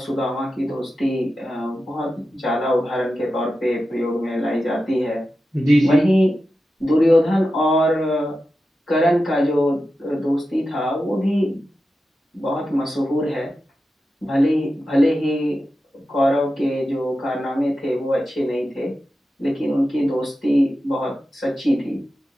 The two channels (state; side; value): normal; both; correlation 0.91